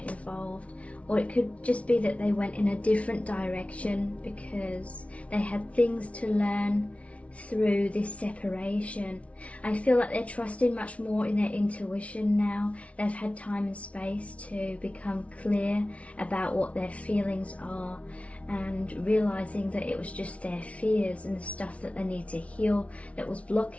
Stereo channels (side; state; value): right; late; 0.064 ms